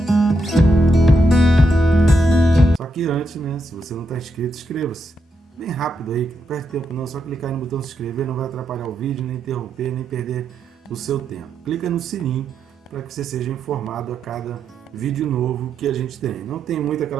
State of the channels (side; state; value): both; normal; correlation 0.82